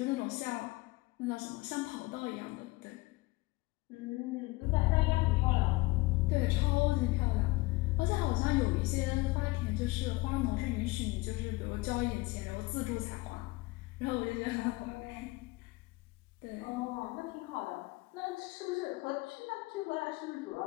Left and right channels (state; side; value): quieter; right; 22.3 dB